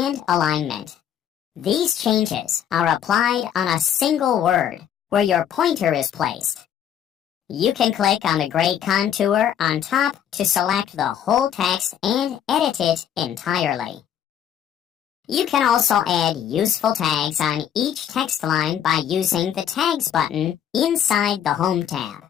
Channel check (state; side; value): quieter; right; 9.6 dB